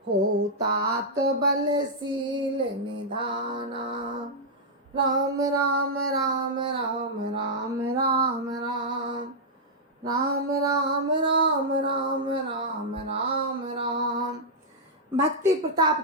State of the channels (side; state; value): both; normal; correlation -0.07